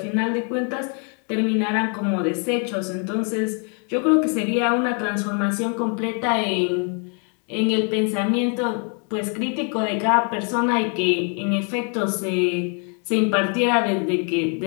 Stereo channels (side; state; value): right; quieter; 39.8 dB